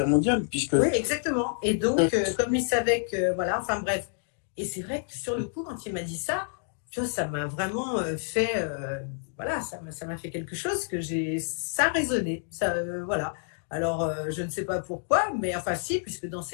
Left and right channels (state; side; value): silent; right; digital silence